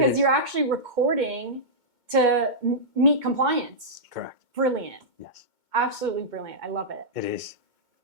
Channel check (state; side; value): late; left; 2.2 ms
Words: you're actually recording to meet compliance. Correct. Brilliant. Yes. Absolutely brilliant. I love it. It is.